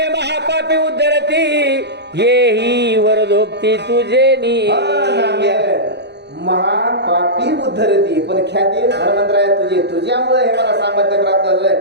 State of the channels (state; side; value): late; left; 0.50 ms